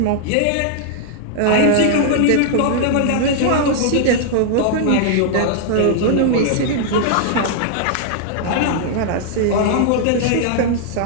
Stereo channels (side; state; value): both; different; correlation -0.01